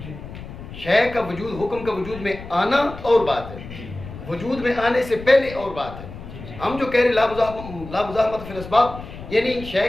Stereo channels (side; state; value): left; noise; rumble, 13 dB below the sound